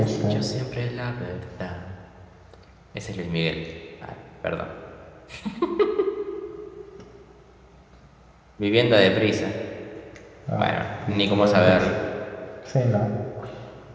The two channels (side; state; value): both; identical; correlation 1.00